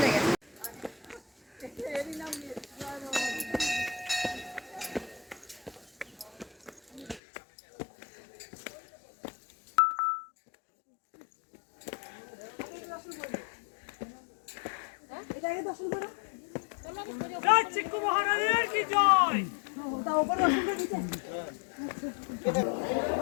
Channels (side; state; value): right; drops out; at 7.2 s